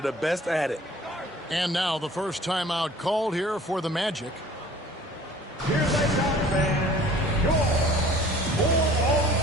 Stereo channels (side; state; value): both; normal; correlation 0.49